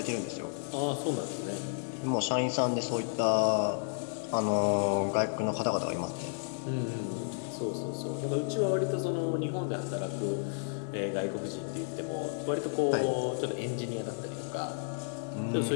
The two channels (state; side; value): silent; right; digital silence